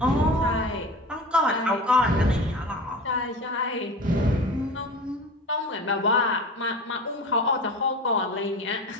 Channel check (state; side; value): normal; both; correlation 0.33